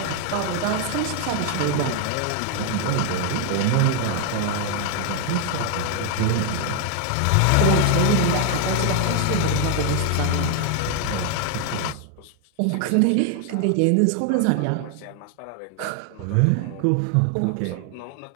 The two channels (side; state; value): both; different; correlation 0.00